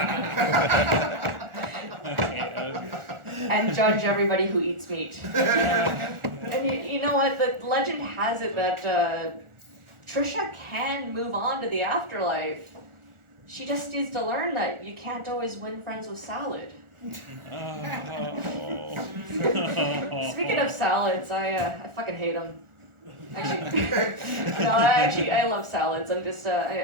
And judge everybody who eats meat. And you know what? The legend has it that Trisha can move on to the afterlife. She just needs to learn that you can't always win friends with salad. Speaking of salads, I fucking hate them. Actually, I love salads. I'm just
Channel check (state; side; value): late; left; 1.4 ms